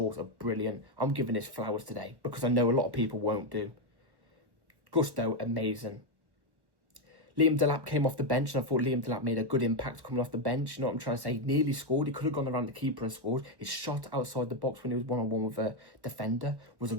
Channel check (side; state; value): left; late; 1.1 ms